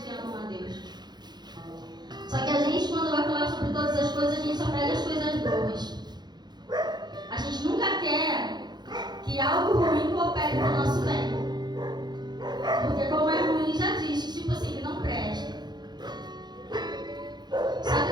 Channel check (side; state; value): left; late; 0.21 ms